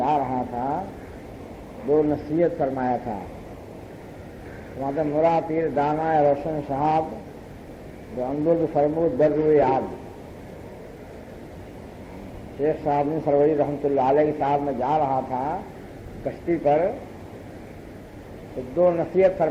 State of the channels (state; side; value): identical; both; correlation 1.00